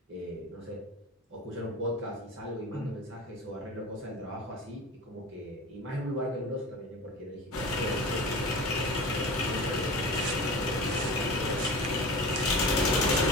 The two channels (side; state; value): both; normal; correlation 0.34